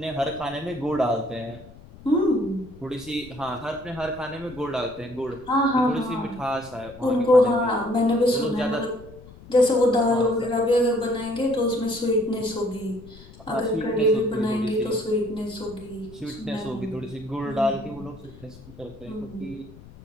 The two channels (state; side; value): noise; left; rumble, 19 dB below the sound